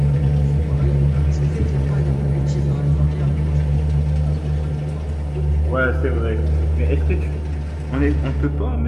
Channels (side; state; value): both; identical; correlation 1.00